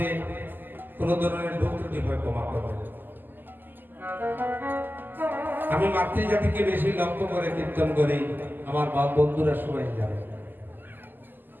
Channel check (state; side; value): late; left; 0.091 ms